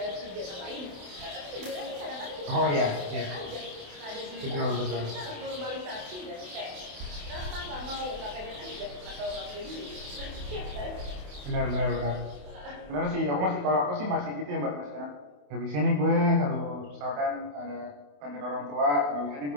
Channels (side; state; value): left; late; 28 ms